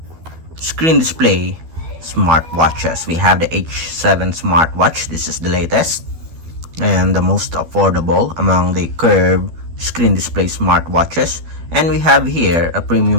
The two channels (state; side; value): late; left; 12 ms